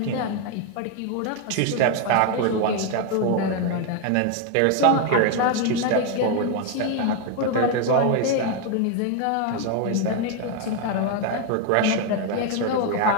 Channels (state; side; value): different; both; correlation 0.01